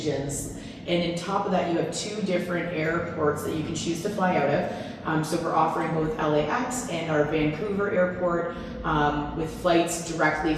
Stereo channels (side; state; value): both; identical; correlation 1.00